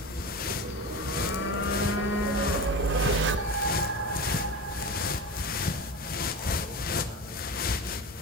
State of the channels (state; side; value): normal; both; correlation 0.27